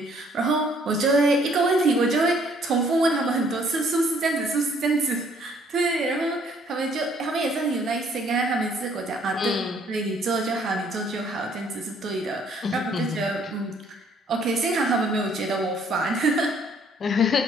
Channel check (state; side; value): normal; both; correlation 0.63